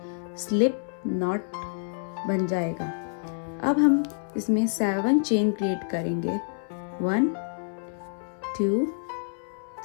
स्लिप नॉट बन जाएगा। अब हम इसमें 7 चेन क्रिएट करेंगे। 1 2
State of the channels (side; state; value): right; silent; 60 dB below the other